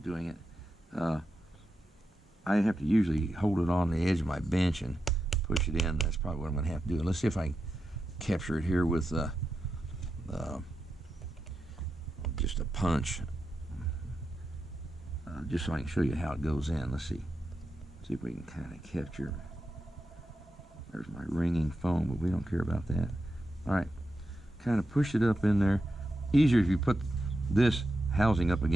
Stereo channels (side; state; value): both; normal; correlation 0.88